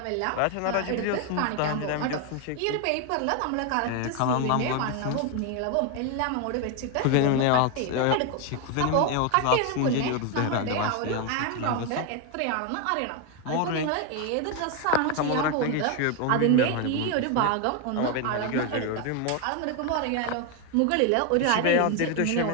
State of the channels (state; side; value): different; both; correlation 0.01